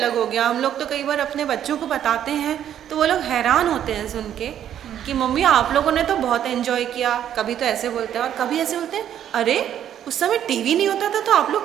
हो गया। हम लोग तो कई बार अपने बच्चों को बताते हैं तो वो लोग हैरान होते हैं सुन के कि मम्मी आप लोगों ने तो बहुत एंजॉय किया। कभी तो ऐसे बोलते हैं और कभी ऐसे बोलते हैं, अरे उस समय टीवी नहीं होता था तो आप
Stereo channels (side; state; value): left; quieter; 10.3 dB